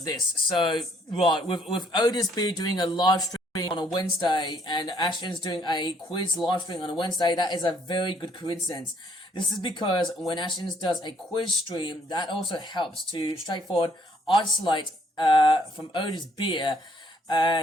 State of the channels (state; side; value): normal; both; correlation 0.66